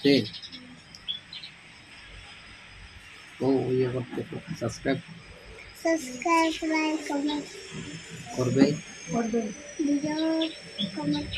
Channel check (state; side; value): identical; both; correlation 1.00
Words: তো ইয়ে করতে সাবস্ক্রাইব লাইক কমেন্ট করবে,